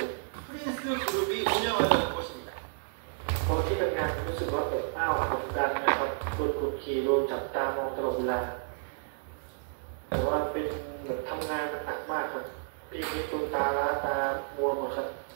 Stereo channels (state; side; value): silent; left; digital silence